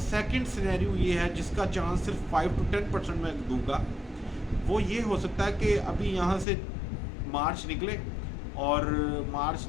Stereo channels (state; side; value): drops out; right; at 6.5 s